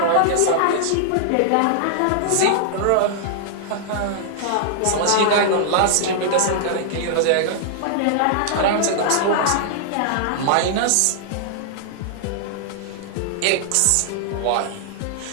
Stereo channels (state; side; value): different; both; correlation -0.01